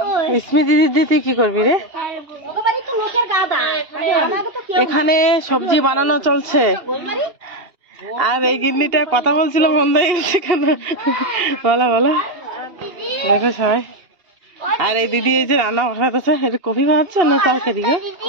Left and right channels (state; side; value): late; left; 2.8 ms